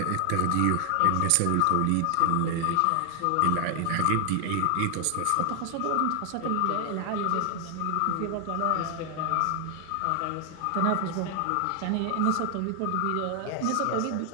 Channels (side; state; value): both; different; correlation 0.00